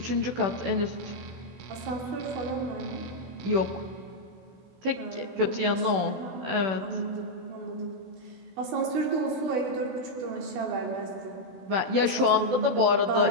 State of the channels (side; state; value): left; late; 16 ms